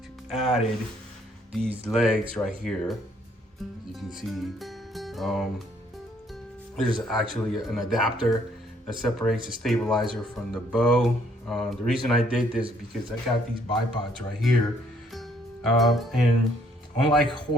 added these legs right here. As you can see, there's actually an adapter that separates the stabilizer from the bow. The reason I did this is because I got these bipods right here, and unlike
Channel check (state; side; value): normal; both; correlation 0.66